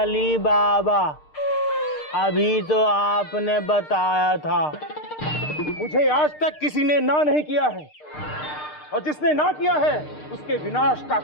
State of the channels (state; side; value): late; right; 6.6 ms